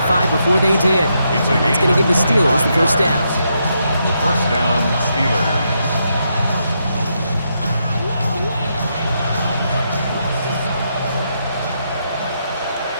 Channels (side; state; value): both; inverted; correlation -0.80